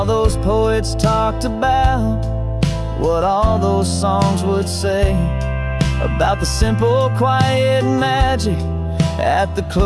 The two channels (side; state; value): both; identical; correlation 1.00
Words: those poets talked about, what all those songs would say about the simple, quiet magic at the